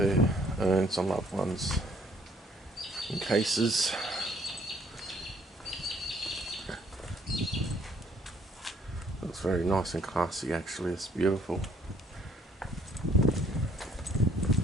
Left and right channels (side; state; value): both; normal; correlation 0.63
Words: urns on loved ones in cases. Looks very nice and classy actually, it's beautiful.